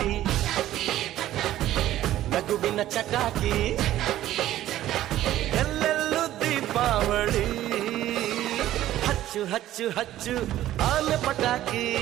ನಗುವಿನ ಚಟಾಕಿ ಎಲ್ಲೆಲ್ಲೂ ದೀಪಾವಳಿ ಹಚ್ಚು ಹಚ್ಚು ಹಚ್ಚು ಆನೆ ಪಟಾಕಿ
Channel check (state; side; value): quieter; left; 13.6 dB